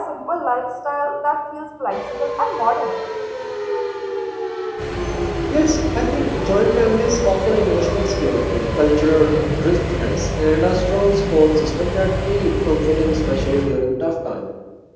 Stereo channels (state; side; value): identical; both; correlation 1.00